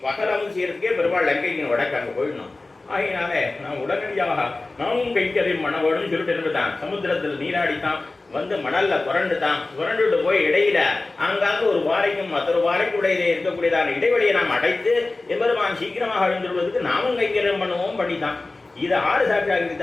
பகலம் செய்யறதுக்கே பெருமாள் லங்கைக்கு வடக்கு அங்கே போயிடணும். ஆகினாலே நான் உடனடியாக நாமும் கைக்கறியும் பண்ண வேணும்னு சொல்லிட்டு இருந்துட்டான். சமுத்திரத்தில் நீராடித்தான் வந்து மணல்ல புரண்டுட்டு போய் இடையில அங்காங்க ஒரு பாறைக்கும் மற்றொரு பாறைக்கு இடையிலே இருக்கக்கூடியதான இடைவெளியை நாம் அடைத்து எம்பெருமான் சீக்கிரமாக எழுந்துள்ளதுக்கு நாமும் கைக்கரியம் பண்ணுவோம் பண்ணித்தான். இது ஆறு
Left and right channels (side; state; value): right; quieter; 3.2 dB